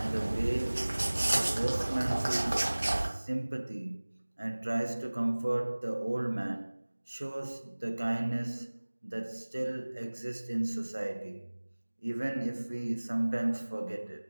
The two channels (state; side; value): inverted; both; correlation -1.00